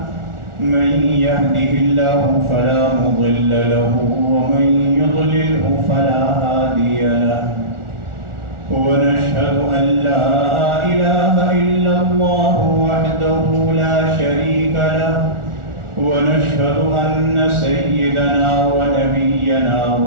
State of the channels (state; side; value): late; left; 1.4 ms